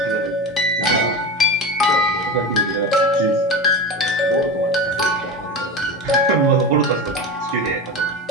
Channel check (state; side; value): normal; both; correlation 0.25